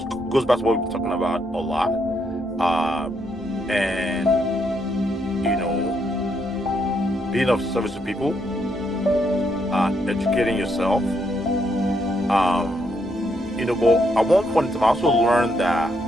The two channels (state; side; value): normal; both; correlation 0.76